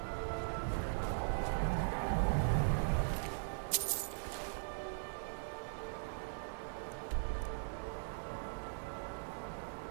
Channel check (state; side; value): silent; left; 51 dB below the other